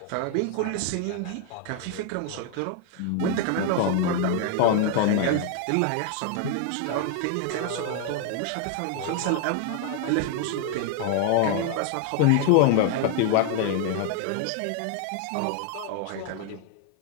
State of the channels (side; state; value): both; different; correlation 0.00